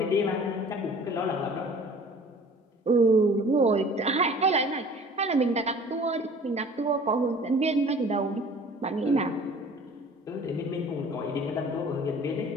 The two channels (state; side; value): normal; both; correlation 0.48